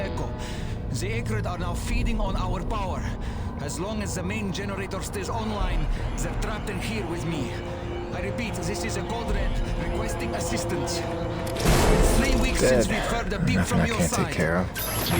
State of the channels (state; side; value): identical; both; correlation 1.00